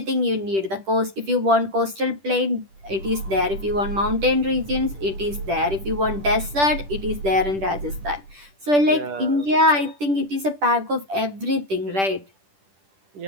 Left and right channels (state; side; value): late; left; 10 ms